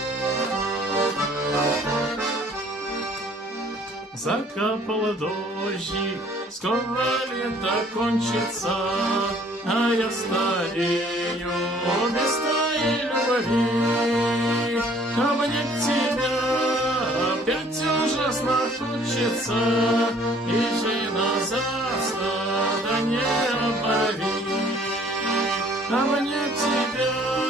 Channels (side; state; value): both; normal; correlation 0.57